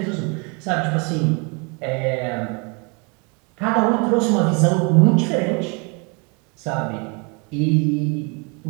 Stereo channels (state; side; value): quieter; left; 32.6 dB